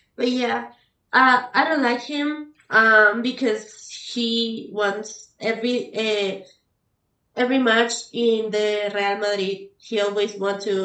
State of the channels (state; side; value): identical; both; correlation 1.00